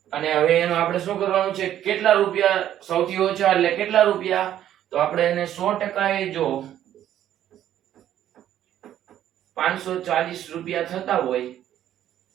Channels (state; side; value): quieter; left; 11.4 dB